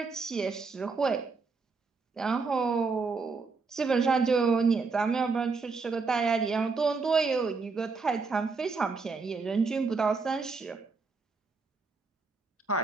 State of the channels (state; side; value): quieter; left; 4.5 dB